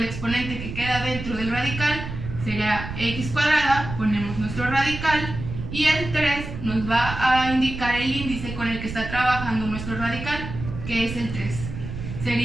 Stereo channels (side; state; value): right; noise; rumble, 8 dB below the sound